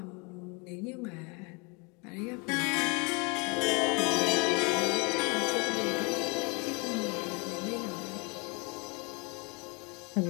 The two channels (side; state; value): right; quieter; 30.7 dB